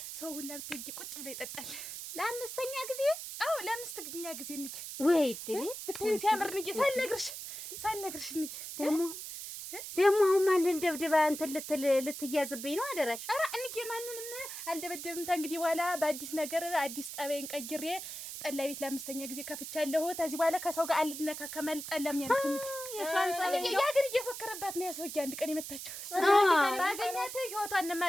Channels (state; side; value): noise; right; hiss, 8 dB below the sound